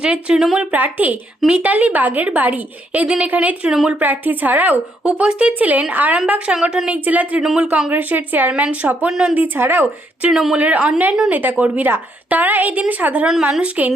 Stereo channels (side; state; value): both; normal; correlation 0.74